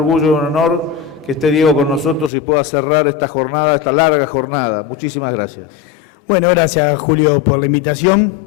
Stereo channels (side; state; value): right; drops out; at 2.3 s